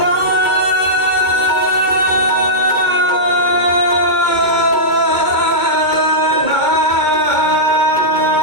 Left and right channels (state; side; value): late; right; 2.2 ms